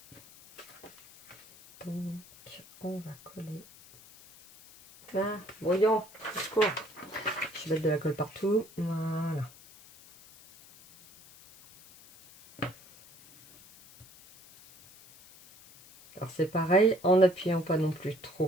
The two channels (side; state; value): left; noise; hiss, 22 dB below the sound